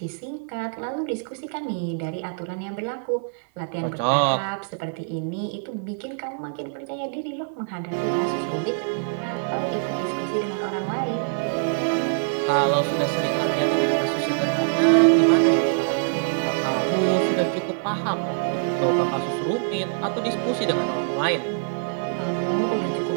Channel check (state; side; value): silent; left; 60 dB below the other